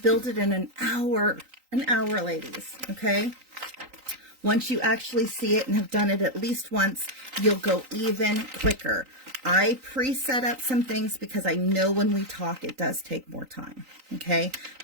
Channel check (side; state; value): left; late; 3.9 ms